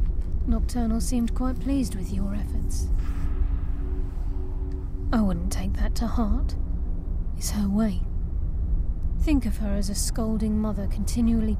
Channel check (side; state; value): both; identical; correlation 1.00